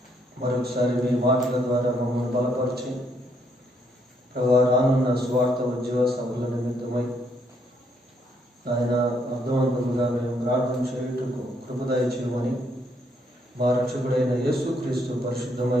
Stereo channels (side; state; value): both; normal; correlation 0.72